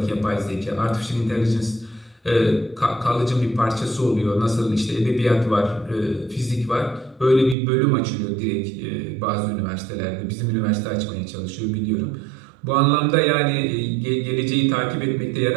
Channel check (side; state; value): left; drops out; at 7.6 s